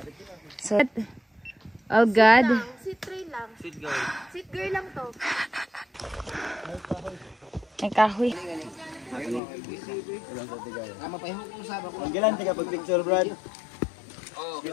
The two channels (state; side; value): drops out; right; at 9.4 s